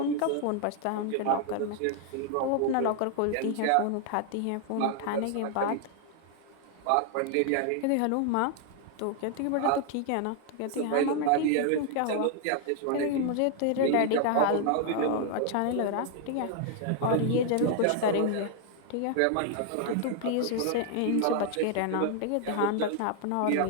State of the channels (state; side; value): different; both; correlation 0.00